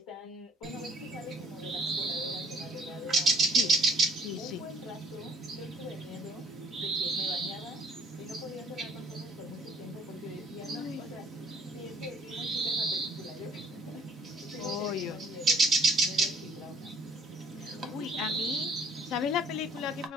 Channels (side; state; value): both; normal; correlation 0.56